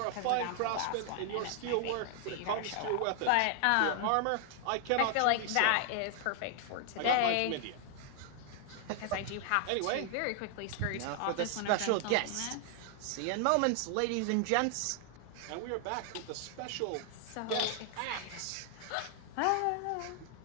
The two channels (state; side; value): different; both; correlation 0.00